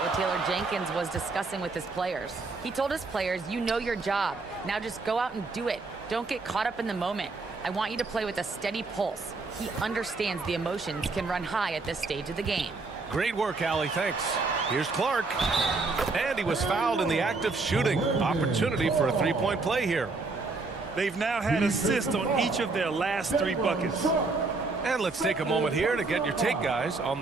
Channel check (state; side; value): quieter; left; 3.8 dB